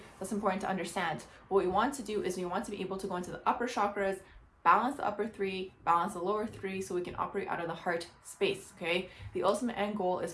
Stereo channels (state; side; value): identical; both; correlation 1.00